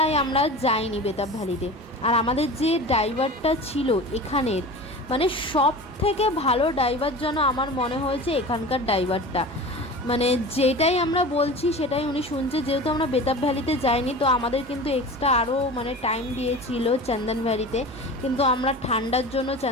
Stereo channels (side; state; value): both; normal; correlation 0.34